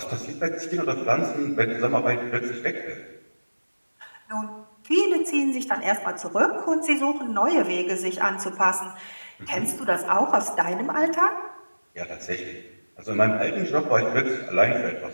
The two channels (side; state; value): both; inverted; correlation -1.00